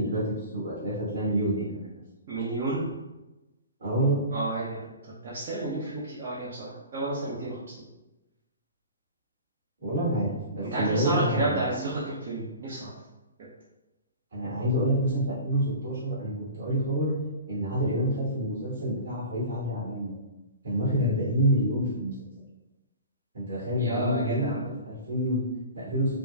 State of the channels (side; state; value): both; inverted; correlation -0.37